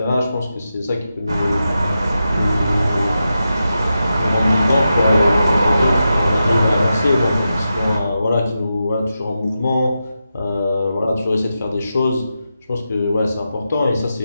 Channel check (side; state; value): both; inverted; correlation -0.89